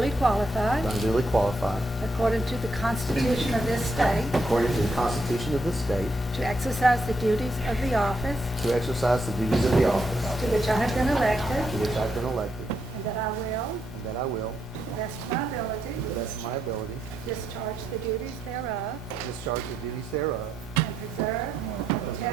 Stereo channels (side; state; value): both; normal; correlation 0.80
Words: qualified, that I'm duly qualified, according to the Constitution of this state, according to the Constitution of this state, to exercise the duties of the office to exercise the duties of the office to which I have been elected, to which I've been elected, and that I will, and that I will, to the best of my ability, to the best of my ability, discharge the duties thereof, discharge the duties thereof, and preserve,